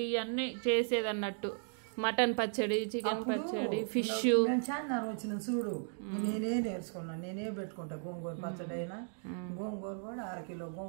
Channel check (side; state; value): left; silent; 54 dB below the other